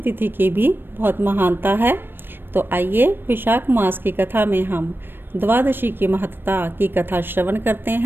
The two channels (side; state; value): left; late; 0.097 ms